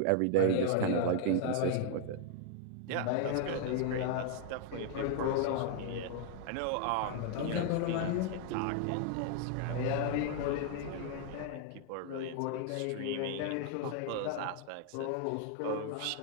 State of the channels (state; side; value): different; both; correlation 0.00